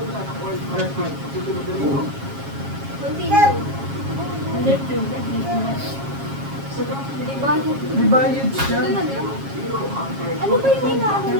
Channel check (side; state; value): left; late; 7.4 ms